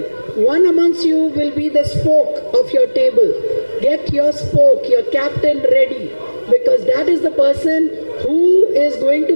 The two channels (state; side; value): inverted; both; correlation -1.00